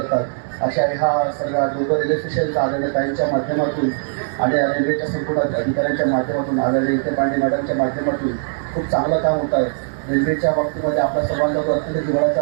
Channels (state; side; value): silent; left; digital silence